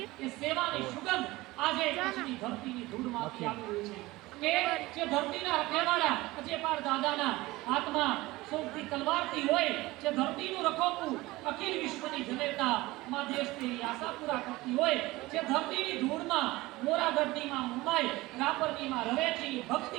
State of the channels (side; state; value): left; quieter; 19.8 dB